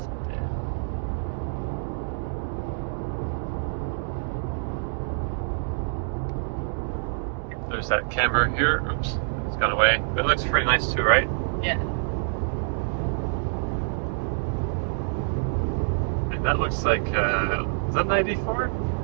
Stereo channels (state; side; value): silent; left; digital silence